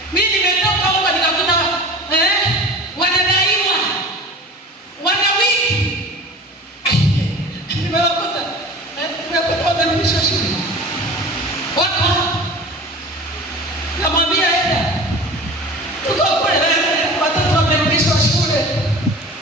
Mimi nimetoka huko nikakuta wanadaiwa, wana wiki. Nimewakuta wamenisha shule. Wako hapa. Namwambia enda. Tuko kule watoto wamerudishwa shule.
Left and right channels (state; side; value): normal; both; correlation 0.38